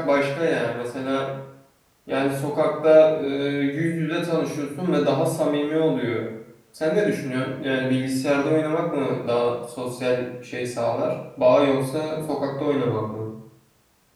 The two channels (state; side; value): identical; both; correlation 1.00